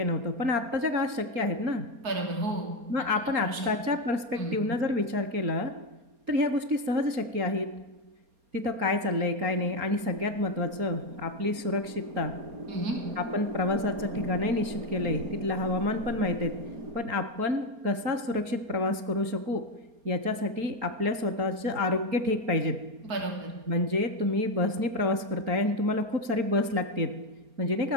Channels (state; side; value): late; left; 4.3 ms